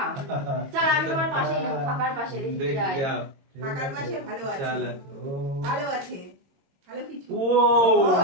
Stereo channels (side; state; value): left; late; 22 ms